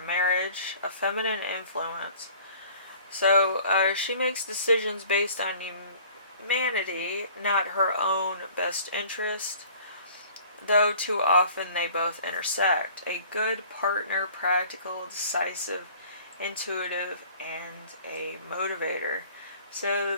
marriage, a feminine influence. So she makes decisions based on humanity, not her own best interest, though too often they both intersect. A good partner, practical, decisive, intuitive, and a motivator. So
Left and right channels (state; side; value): inverted; both; correlation -0.50